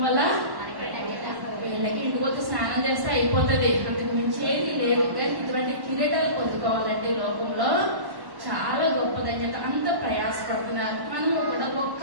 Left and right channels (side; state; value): left; late; 1.1 ms